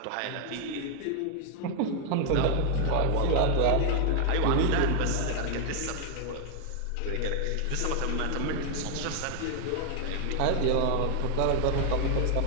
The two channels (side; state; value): both; different; correlation 0.00